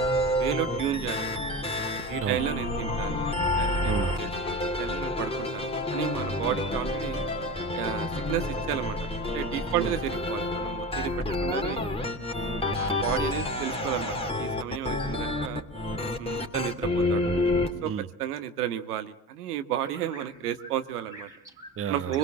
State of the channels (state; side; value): normal; both; correlation 0.29